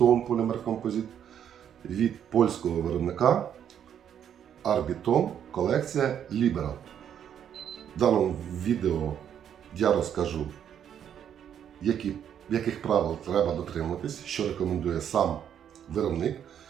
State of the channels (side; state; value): left; quieter; 9.2 dB